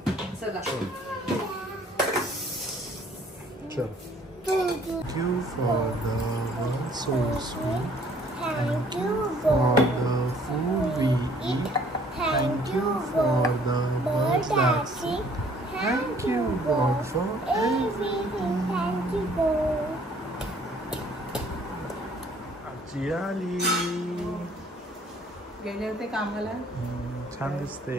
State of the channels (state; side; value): normal; both; correlation 0.58